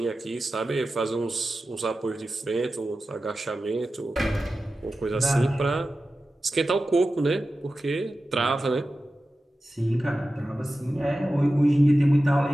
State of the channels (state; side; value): normal; both; correlation 0.94